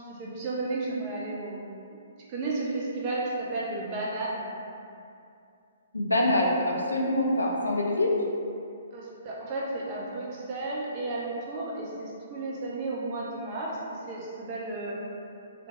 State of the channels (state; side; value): inverted; both; correlation -0.60